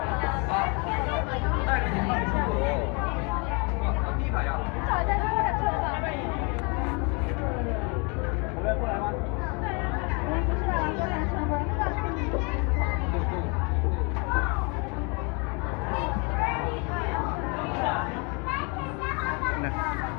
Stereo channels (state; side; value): quieter; right; 32.3 dB